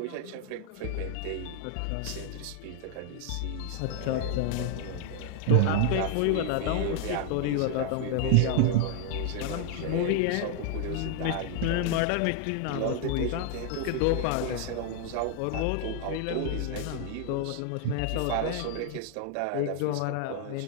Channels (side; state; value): both; different; correlation 0.00